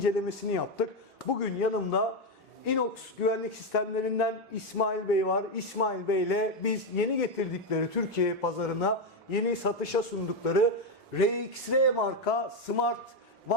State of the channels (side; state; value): both; normal; correlation 0.08